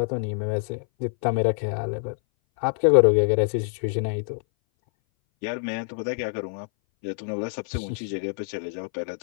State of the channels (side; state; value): right; silent; 59 dB below the other